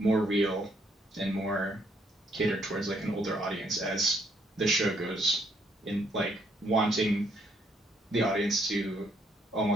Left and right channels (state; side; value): normal; both; correlation 0.70